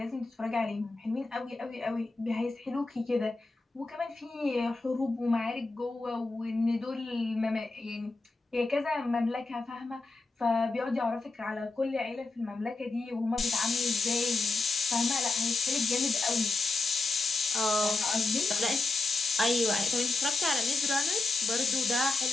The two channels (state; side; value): quieter; right; 3.5 dB